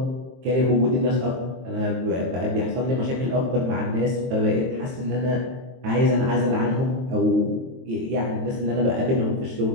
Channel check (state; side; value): late; left; 23 ms